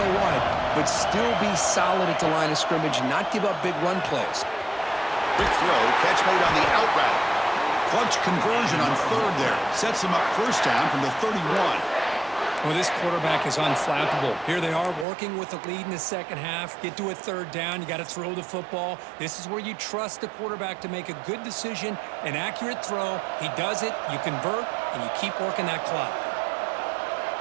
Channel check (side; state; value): left; drops out; at 15.1 s